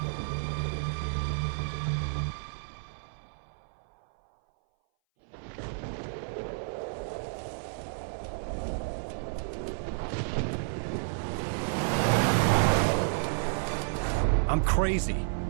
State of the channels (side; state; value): left; silent; 57 dB below the other